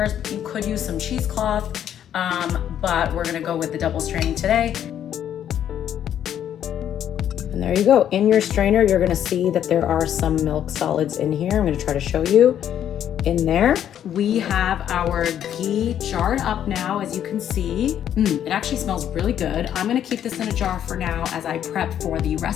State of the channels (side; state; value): right; quieter; 10.1 dB